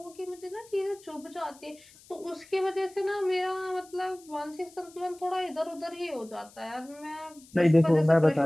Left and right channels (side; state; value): left; noise; hiss, 24 dB below the sound